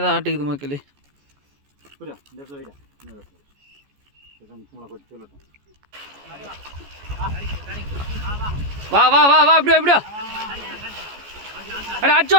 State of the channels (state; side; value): late; left; 14 ms